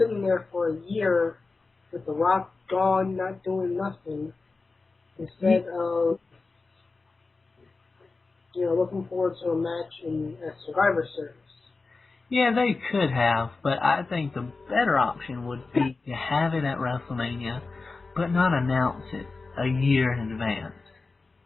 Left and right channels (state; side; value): quieter; right; 3.9 dB